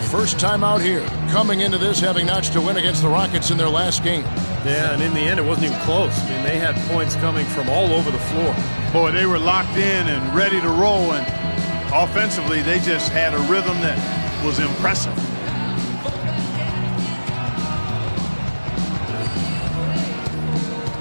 first time out here, coming into this having notched a win against the Rockets in their last game. Yeah, and in the end, it wasn't even close. I mean, they had points coming from all over the floor. Boy, they were locked in and ready to roll, and offensively, they just had a rhythm that was impressive.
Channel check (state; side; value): inverted; both; correlation -1.00